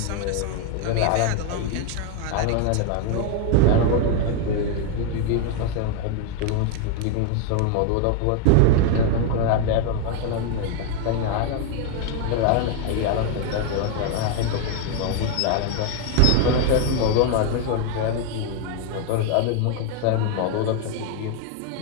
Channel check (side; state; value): both; different; correlation 0.01